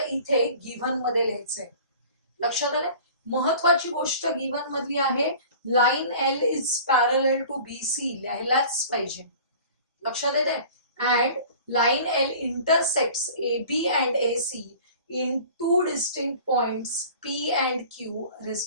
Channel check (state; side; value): inverted; both; correlation -0.44